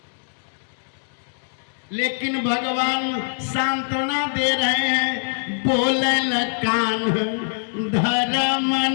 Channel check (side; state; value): right; silent; digital silence